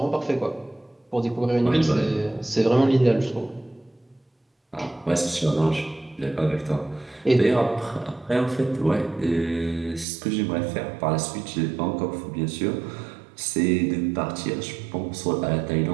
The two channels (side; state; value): left; drops out; at 10.1 s